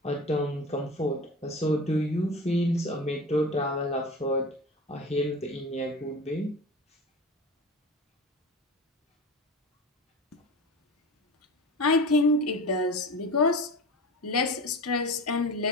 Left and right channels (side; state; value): both; normal; correlation 0.31